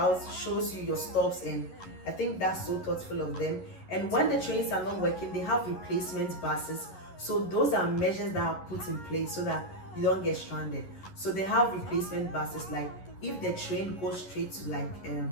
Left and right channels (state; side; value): late; right; 11 ms